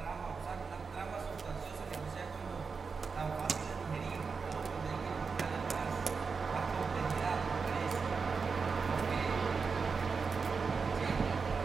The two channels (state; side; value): quieter; left; 5.1 dB